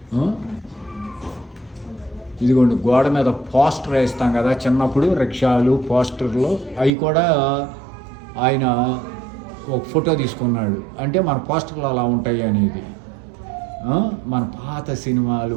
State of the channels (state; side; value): drops out; left; at 6.9 s